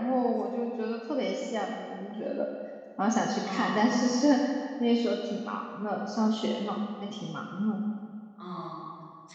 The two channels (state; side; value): identical; both; correlation 1.00